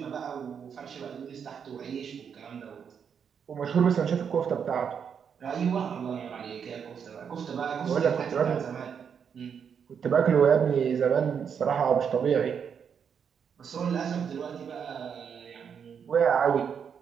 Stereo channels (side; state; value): left; quieter; 7.2 dB